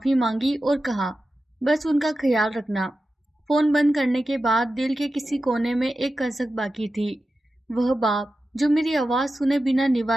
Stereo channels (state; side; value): normal; both; correlation 0.93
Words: मांगी और कहा, बस उनका ख्याल रखना। फोन बंद करने के बाद दिल के किसी कोने में एक कसक बाकी थी। वह बाप जो मेरी आवाज सुने बिना